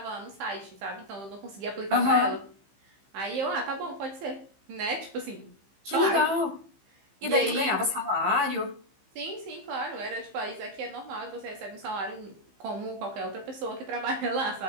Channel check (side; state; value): left; late; 15 ms